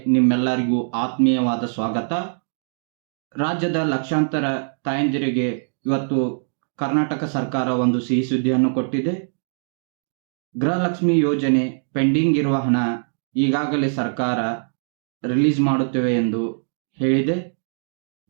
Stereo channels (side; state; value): left; silent; digital silence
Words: ನಿಮ್ಮೆಲ್ಲರಿಗೂ ಆತ್ಮೀಯವಾದ ಸ್ವಾಗತ. ರಾಜ್ಯದ ಲಕ್ಷಾಂತರ ತಾಯಂದಿರಿಗೆ ಇವತ್ತು ಕರ್ನಾಟಕ ಸರ್ಕಾರ ಒಂದು ಸಿಹಿ ಸುದ್ದಿಯನ್ನು ಕೊಟ್ಟಿದೆ. ಗೃಹಲಕ್ಷ್ಮಿ ಯೋಜನೆ ಪೆಂಡಿಂಗ್ ಇರುವ ಹಣ ಈಗಾಗಲೇ ಸರ್ಕಾರ ರಿಲೀಸ್ ಮಾಡುತ್ತೇವೆ ಎಂದು ಹೇಳಿದೆ.